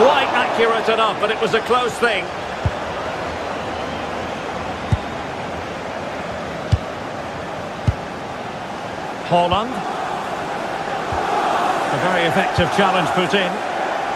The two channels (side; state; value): both; identical; correlation 1.00